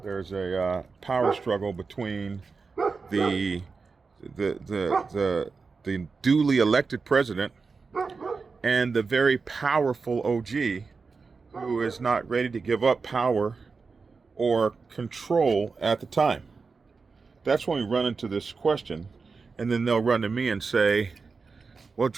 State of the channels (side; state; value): left; quieter; 4.6 dB